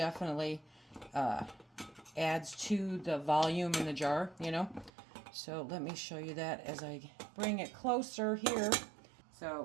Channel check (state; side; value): drops out; left; at 4.9 s